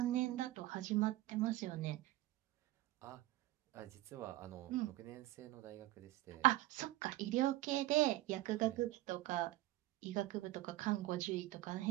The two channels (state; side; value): quieter; left; 16.7 dB